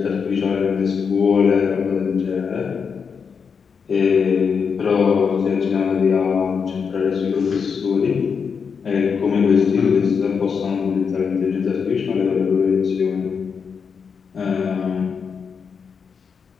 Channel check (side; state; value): right; quieter; 6.1 dB